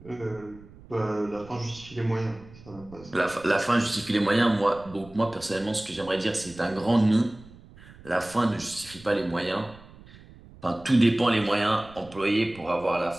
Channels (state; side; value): noise; right; rumble, 21 dB below the sound